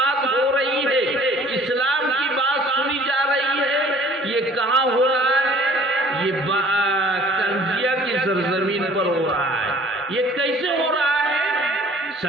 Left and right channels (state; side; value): normal; both; correlation 0.52